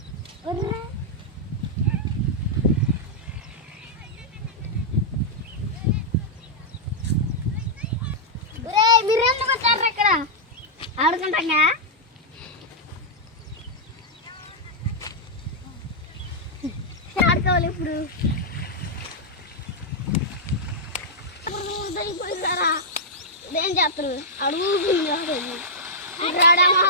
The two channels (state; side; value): normal; both; correlation -0.07